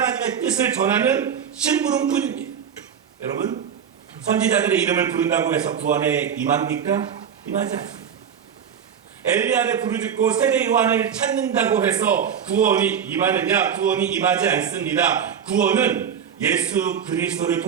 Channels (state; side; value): quieter; left; 7.9 dB